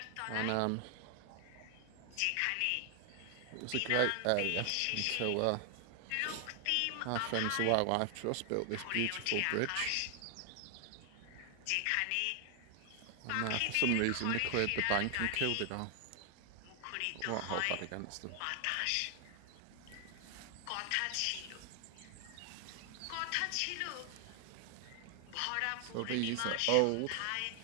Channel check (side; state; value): both; different; correlation 0.00